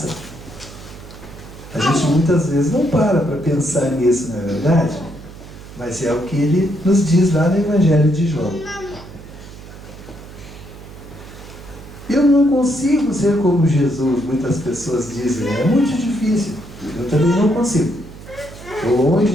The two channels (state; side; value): noise; right; hum, 16 dB below the sound